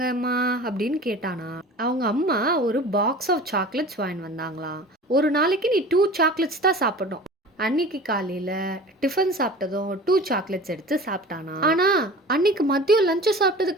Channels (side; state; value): both; normal; correlation 0.39